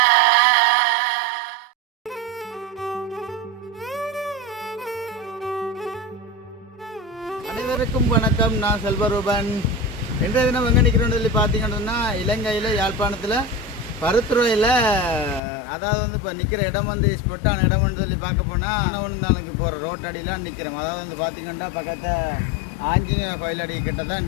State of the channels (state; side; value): drops out; right; at 15.4 s